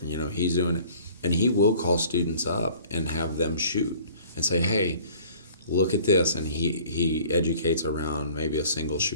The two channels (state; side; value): inverted; both; correlation -0.51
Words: he's doing it, and he will call students up and have them shoot and say, hey, look at this, and he educates around maybe a single